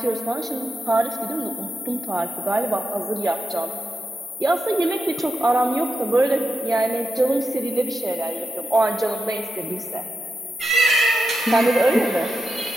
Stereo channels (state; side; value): normal; both; correlation 0.87